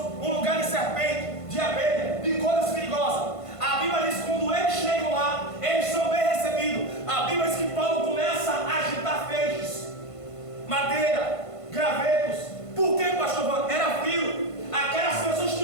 um lugar de serpente, de abelha, de coisas perigosas. A Bíblia diz que quando eles chegam lá, eles são bem recebidos. A Bíblia diz que Paulo começa a agitar feixes, madeira, gravetos. Por que, pastor? Era frio. Aquelas pessoas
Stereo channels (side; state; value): right; late; 1.5 ms